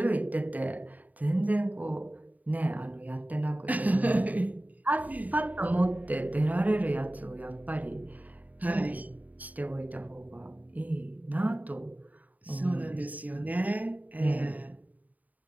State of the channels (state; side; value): late; left; 0.076 ms